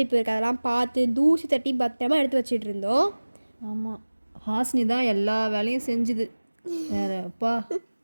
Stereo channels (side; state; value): both; inverted; correlation -1.00